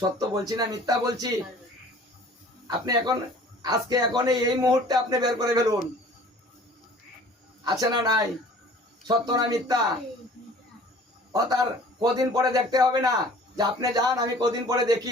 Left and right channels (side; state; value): both; normal; correlation 0.49